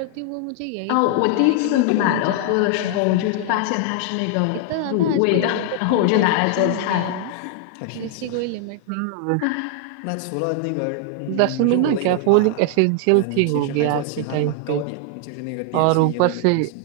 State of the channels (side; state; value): both; different; correlation 0.00